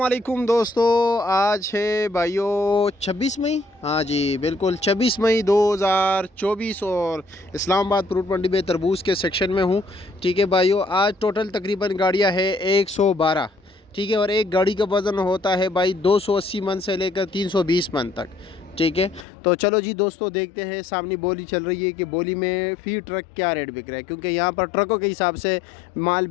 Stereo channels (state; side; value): drops out; right; at 19.2 s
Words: दोस्तों, आज है भाइयों 26 मई। हाँ जी बिल्कुल 26 मई 2024 और इस्लामाबाद फ्रूट मंडी में तरबूज के सेक्शन में हूँ। ठीक है भाइयों, आज टोटल तकरीबन गाड़ियाँ है 112। ठीक है, और एक गाड़ी का वज़न होता है भाई 280 मन से लेकर 320 मन तक। ठीक है, तो चलो जी दोस्तों देखते हैं। सामने बोली चल रही है कि बोली में फ़ी ट्रक क्या रेट बिक रहा है, क्योंकि यहाँ पर ट्रकों के हिसाब से माल